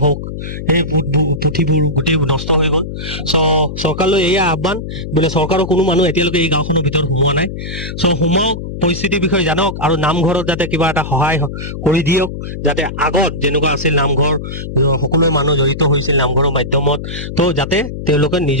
হওক সেই পুথিবোৰ গোটেই নষ্ট হৈ গ'ল চৰকাৰলৈ এয়া আহ্বান বোলে চৰকাৰৰ কোনো মানুহ এতিয়ালৈকে এই গাঁওখনৰ ভিতৰত সোমোৱা নাই সোমাওক পৰিস্থিতিৰ বিষয়ে জানক আৰু নামঘৰত যাতে কিবা এটা সহায় কৰি দিয়ক যাতে আগত যেনেকুৱা আছিল নামঘৰ সকলোৱে মানুহ জড়িত হৈছিল নামঘৰৰ মাধ্যমত তো যাতে তেওঁলোকে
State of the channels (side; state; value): left; noise; hum, 8 dB below the sound